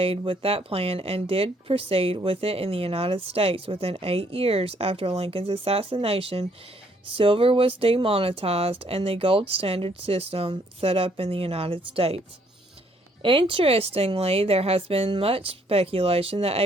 with that plan and did proceed with it in the United States. Within 8 years after Lincoln's assassination, silver was demonetized and the gold standard system set up in the United States. Interestingly, there has been much speculation that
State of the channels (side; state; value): both; normal; correlation 0.67